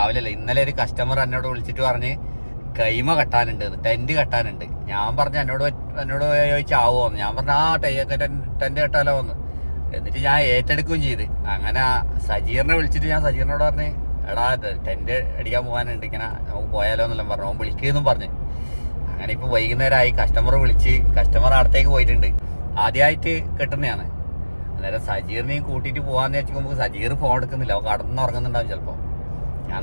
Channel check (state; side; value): inverted; both; correlation -1.00